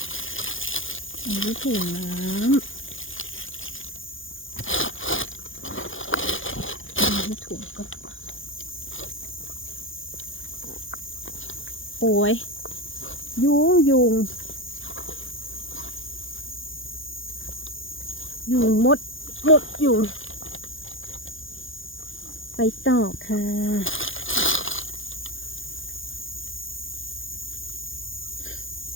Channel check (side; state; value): right; late; 0.58 ms